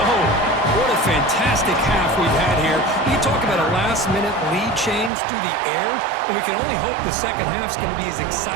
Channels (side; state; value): left; drops out; at 5.1 s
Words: What a fantastic half we've had here. You talk about a last-minute lead change through the air, and we can only hope the second half's going to be as